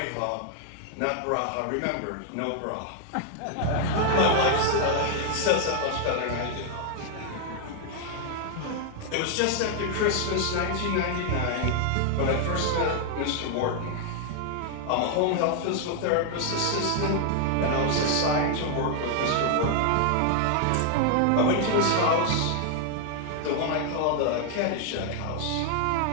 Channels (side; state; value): both; different; correlation 0.00